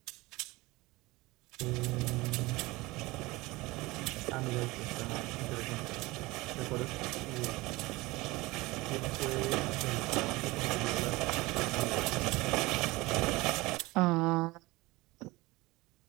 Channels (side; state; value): left; quieter; 21.4 dB